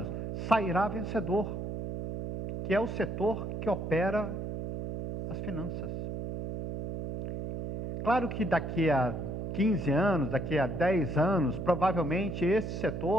sairá vencedor, que é o setor que opera as finanças. Claro que daqui a 15 anos, daqui a 10 anos, provavelmente esse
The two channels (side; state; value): right; noise; hum, 5 dB below the sound